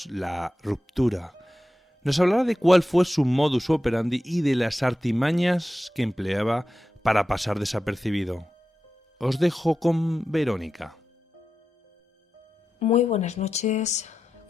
la ruptura. Nos hablará de cuál fue su modus operandi y de las artimañas que empleaba para pasar desapercibido. Os dejo con Verónica. Muy buenas noches,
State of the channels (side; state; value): both; normal; correlation 0.91